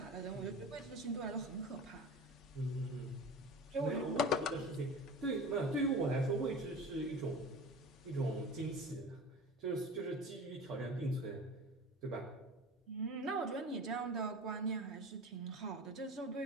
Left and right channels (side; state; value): both; normal; correlation 0.35